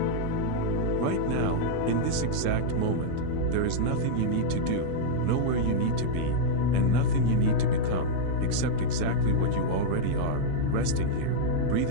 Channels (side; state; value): both; different; correlation -0.02